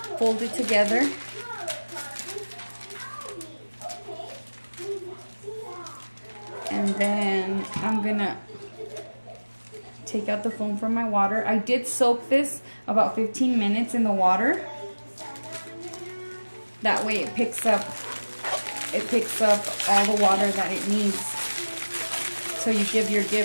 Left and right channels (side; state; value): both; inverted; correlation -1.00